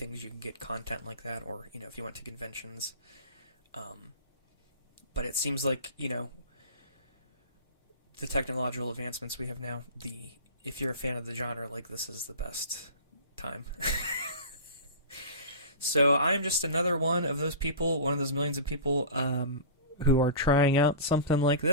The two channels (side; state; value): both; inverted; correlation -0.33